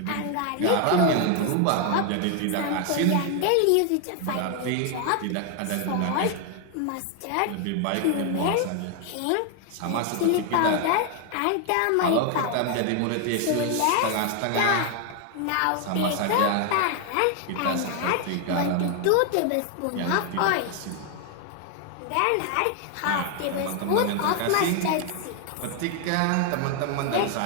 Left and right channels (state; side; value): different; both; correlation 0.01